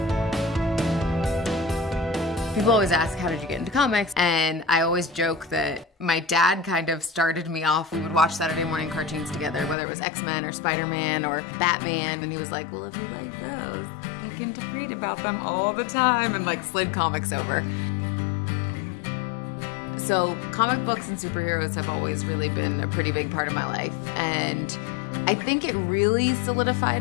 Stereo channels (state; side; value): drops out; right; at 9.8 s